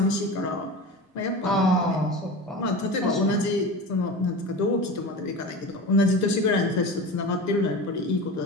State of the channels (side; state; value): both; normal; correlation 0.30